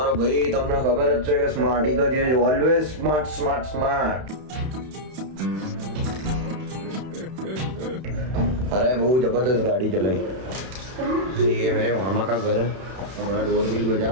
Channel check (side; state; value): left; late; 31 ms